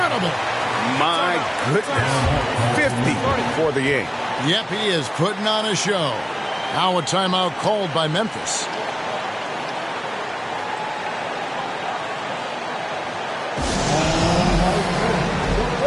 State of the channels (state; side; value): identical; both; correlation 1.00